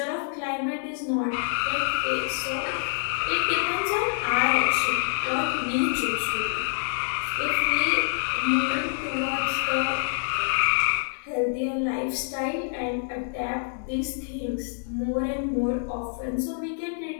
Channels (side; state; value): right; silent; 60 dB below the other